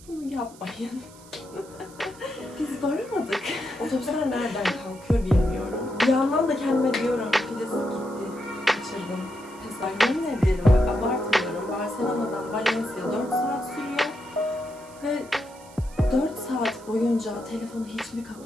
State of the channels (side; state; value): right; noise; hiss, 22 dB below the sound